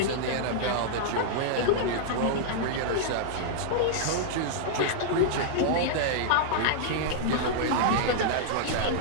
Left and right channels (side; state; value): both; different; correlation -0.01